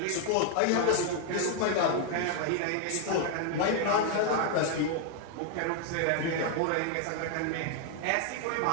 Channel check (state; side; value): different; both; correlation 0.00